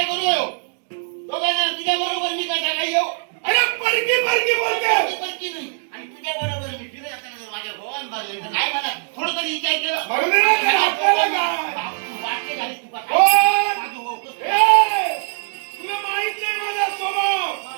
करू दोघांना तुझ्या बरोबर मी कसा काय येऊ. अरे परकी बोलते. परकी नाही आणि तुझ्या बरोबर मी फिरत असताना जर माझ्या भगवान बाजले तर काय म्हणा थोडं तरी विचार केलं वाक्य झाली तुका तुला माहित नाही माझा स्वभाव.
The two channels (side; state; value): left; silent; digital silence